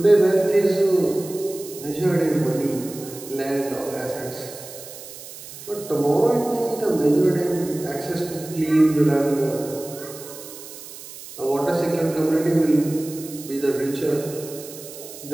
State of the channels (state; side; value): noise; right; hiss, 14 dB below the sound